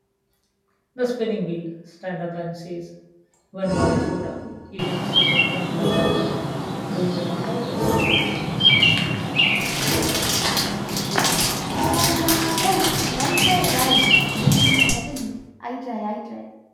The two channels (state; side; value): identical; both; correlation 1.00